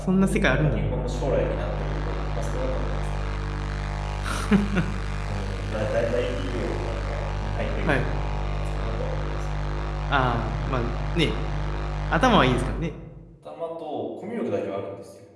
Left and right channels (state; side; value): identical; both; correlation 1.00